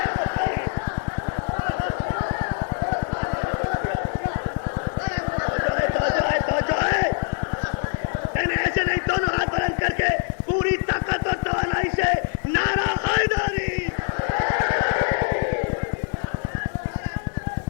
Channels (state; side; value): silent; right; digital silence